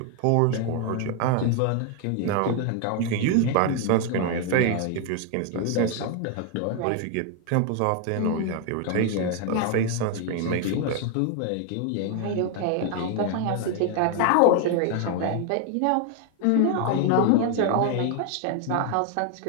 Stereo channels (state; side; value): different; both; correlation 0.00